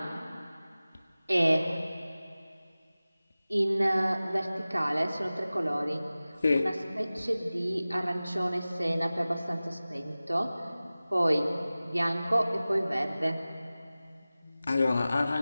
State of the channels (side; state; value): both; inverted; correlation -0.97